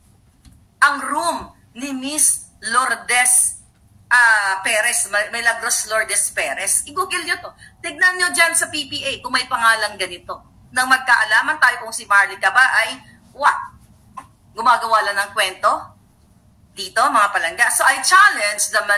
ang room ni Miss Lourdes Perez, Milagros Lourdes Perez. I-google nyo to. Tignan nyo dyan sa PPA kung may pangalan ganito. Nang magkaalaman tayo kung si Maharlika ba ay, gumagawa lang ng kwento? Dito, mga palangga. So, I challenge the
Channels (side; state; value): both; identical; correlation 1.00